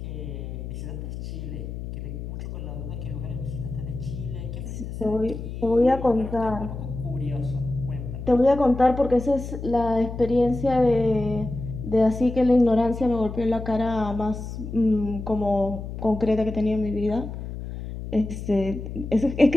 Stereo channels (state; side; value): noise; left; hum, 8 dB below the sound